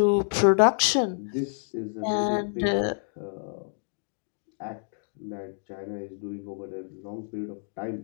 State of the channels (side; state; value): right; silent; digital silence